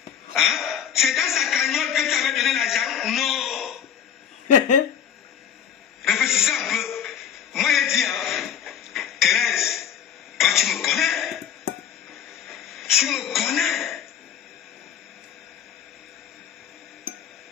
Hein? C'est dans sa cagnotte que tu avais donné l'argent? Non. Réfléchissez un peu. Moi, j'ai dit, hein, Thérèse, toi, tu me connais.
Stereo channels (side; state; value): right; quieter; 8.8 dB